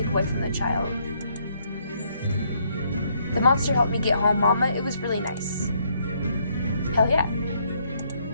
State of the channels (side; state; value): both; inverted; correlation -0.71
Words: away from the child. The monster helped me get home, Mama. It was really nice. Hell yeah.